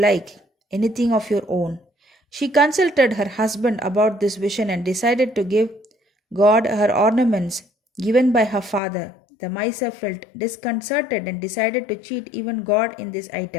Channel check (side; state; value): right; drops out; at 8.8 s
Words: anything of your own. She consulted her husband about this vision and decided to give God her ornaments given by her father. The miser felt disconcerted and decided to cheat even God in this